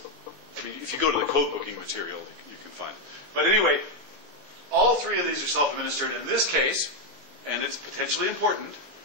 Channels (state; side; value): late; left; 20 ms